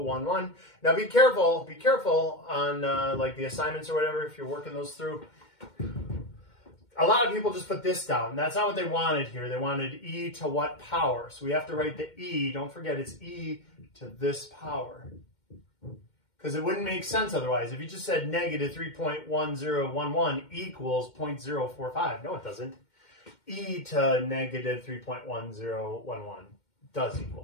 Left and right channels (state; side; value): late; right; 2.1 ms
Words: Now be careful on like the assignments or whatever, if you're working those through. A lot of people just put this down. That's not what they wanted here. They wanted e to what power? So we have to write the e. Don't forget, it's e to this power. Because it wouldn't make sense otherwise. If you just said negative 3.1011 equals 0.045. No, it doesn't. E to negative 3.1011 does